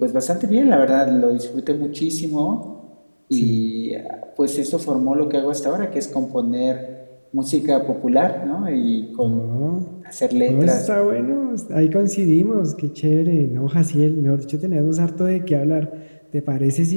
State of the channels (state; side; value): inverted; both; correlation -1.00